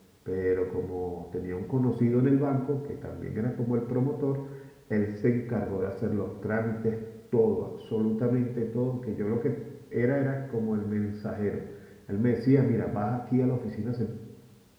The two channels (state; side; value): identical; both; correlation 1.00